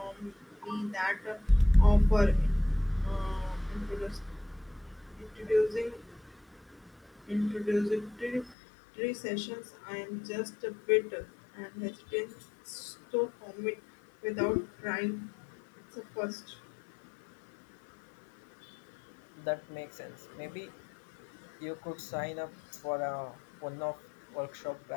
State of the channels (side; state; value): right; drops out; at 8.6 s